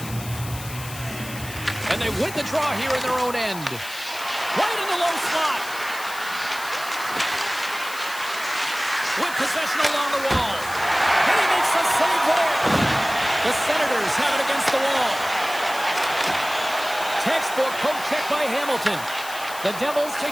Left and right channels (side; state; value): left; noise; hiss, 13 dB below the sound